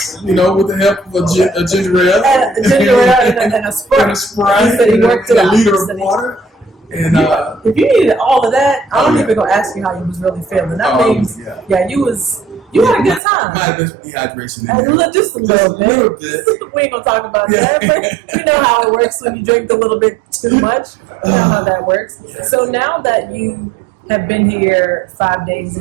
You know, with the help of a ginger ale. And a ginger ale and a Sprite. And a Sprite. He said he worked it out. A liter of water. And if you needed all of that, I don't even gonna ask you how you was really feeling. That means, you had a good time. Might have been dehydration in there. Just a little bit. We ain't gonna talk about that. But you know how it works when you drink a little bit too much. You know how that works. Yeah. So now that you have been here 5 days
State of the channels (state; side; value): drops out; left; at 13.2 s